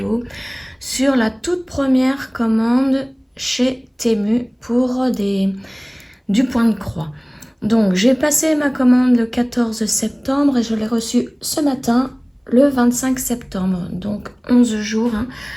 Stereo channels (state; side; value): identical; both; correlation 1.00